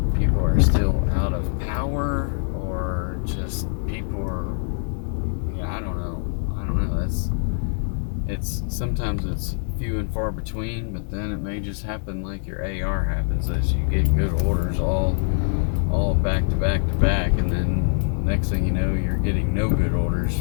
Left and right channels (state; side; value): silent; right; 59 dB below the other